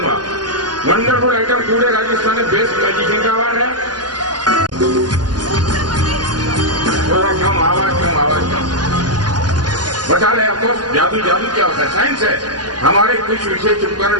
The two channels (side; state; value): left; late; 0.70 ms